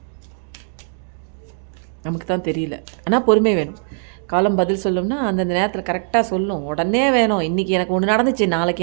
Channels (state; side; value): silent; left; digital silence